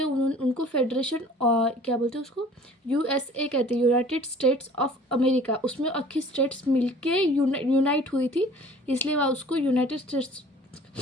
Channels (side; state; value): both; normal; correlation 0.49